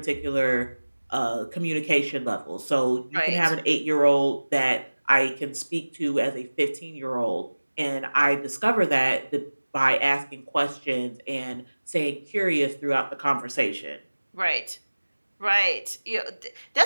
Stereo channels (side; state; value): both; inverted; correlation -1.00